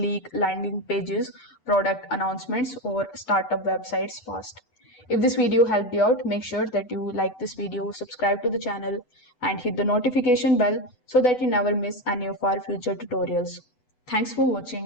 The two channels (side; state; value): right; late; 8.1 ms